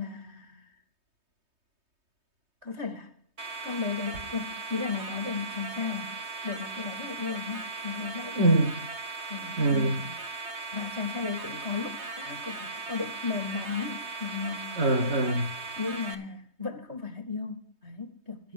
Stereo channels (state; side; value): late; left; 3.2 ms